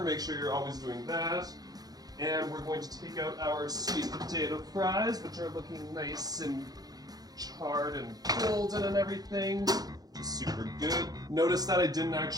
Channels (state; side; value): late; left; 0.19 ms